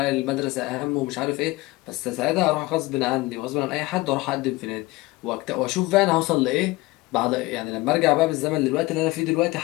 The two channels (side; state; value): right; quieter; 20.9 dB